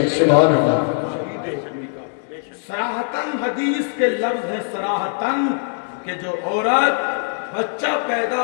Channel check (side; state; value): right; silent; digital silence